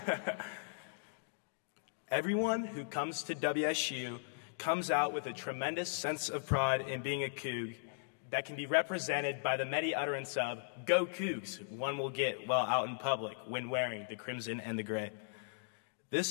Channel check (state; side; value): silent; right; digital silence